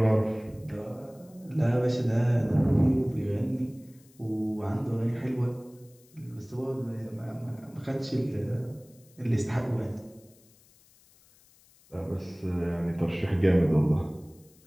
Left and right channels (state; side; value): noise; left; hiss, 29 dB below the sound